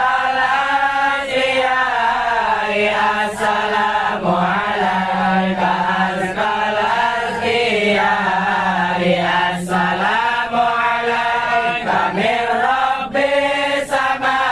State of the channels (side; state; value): right; noise; rumble, 24 dB below the sound